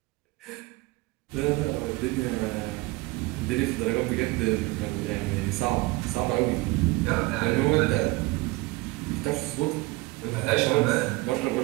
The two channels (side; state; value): left; quieter; 22.1 dB